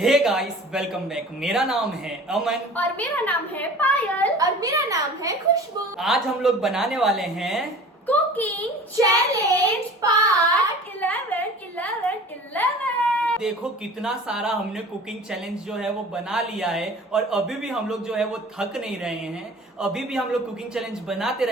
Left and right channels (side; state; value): both; normal; correlation 0.42